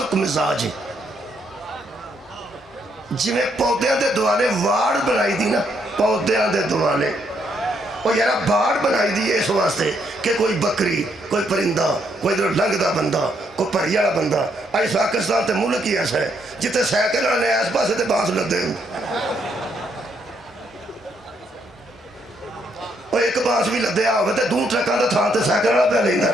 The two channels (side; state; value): both; normal; correlation 0.74